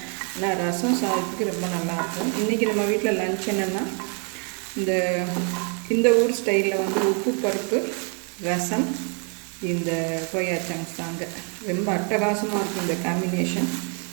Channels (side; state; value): left; quieter; 39.1 dB